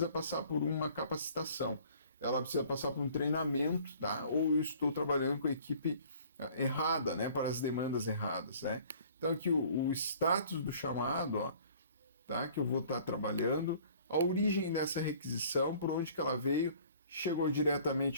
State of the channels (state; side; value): inverted; both; correlation -0.53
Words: passar por uma capacitação. Ela precisa passar por um treinamento, tá? Ou eu estou trabalhando com a equipe errada, né? Para as demandas erradas, né? Então aqui o status do chamado, ó, tá? Que eu vou estar trabalhando, a origem dessa requisição, por onde que ela veio, chegou